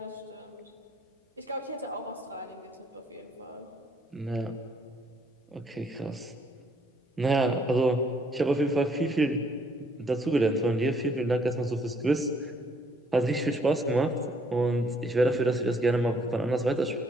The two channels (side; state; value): both; normal; correlation 0.66